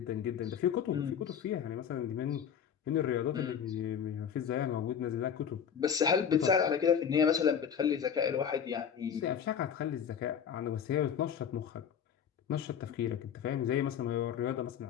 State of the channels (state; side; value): quieter; right; 8.0 dB